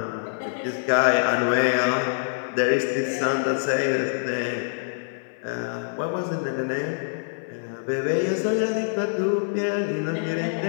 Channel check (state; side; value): silent; right; 56 dB below the other